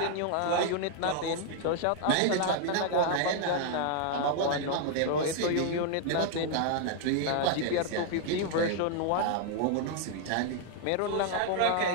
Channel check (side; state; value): both; different; correlation 0.00